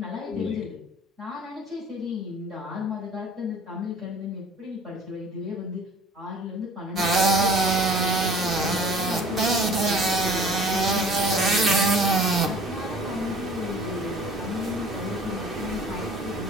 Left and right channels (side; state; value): both; normal; correlation 0.48